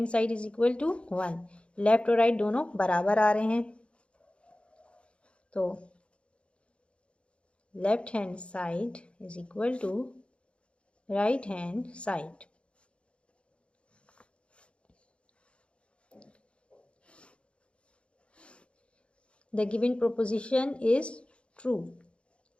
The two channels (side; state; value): right; late; 0.058 ms